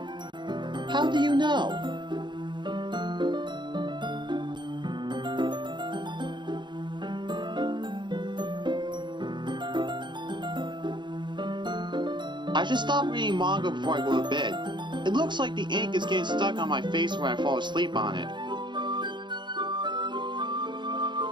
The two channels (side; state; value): left; late; 0.22 ms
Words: How do you know? I should stop reading manga before I go to bed. It looks like the ink is getting stuck on my face when I fall asleep on it.